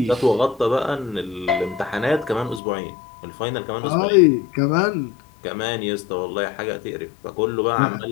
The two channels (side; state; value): right; drops out; at 2.6 s